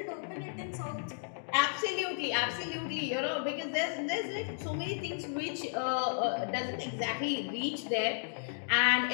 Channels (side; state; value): right; silent; digital silence